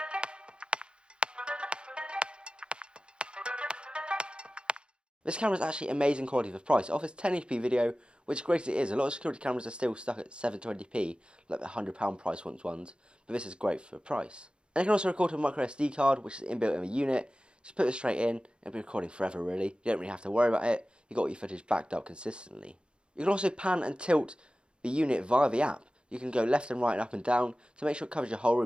This camera is actually amazing quality for price. It offers 1080p video, which great as it is. A lot of security cameras are still stuck at 720p, like the £100 price ones, but this is great for price. And it can also record to a micro SD card, which is inbuilt in the unit. Just put it straight in, and it'll be recording forever really. You don't really have to worry about it. You've got your footage backed up consistently. You can also pan and tilt the unit via the app. You can go left and right and up and down to make sure it covers your whole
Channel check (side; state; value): left; late; 0.054 ms